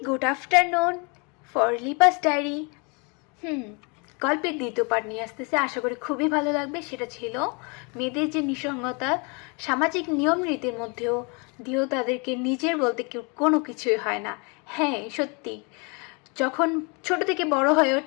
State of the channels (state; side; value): quieter; right; 32.2 dB